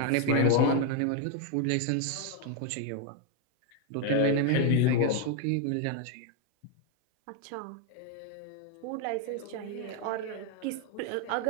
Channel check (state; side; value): different; both; correlation 0.01